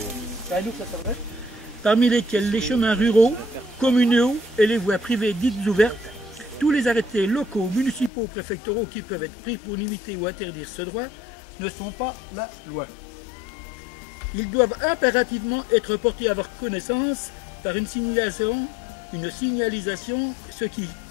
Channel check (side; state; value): right; drops out; at 8.1 s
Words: C'est à nous que ça s'adresse. Parmi lesquels les chemins ruraux, communaux et les voies privées dites ouvertes, tous les arrêtés locaux, municipaux, préfectoraux qui peuvent être pris pour limiter ou interdire ce droit ne sont pas la loi. Ils doivent impérativement être portés à votre connaissance par une signalisation, ce qui